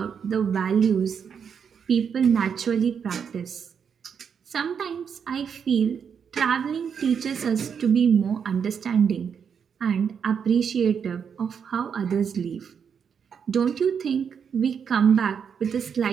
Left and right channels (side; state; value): left; quieter; 7.1 dB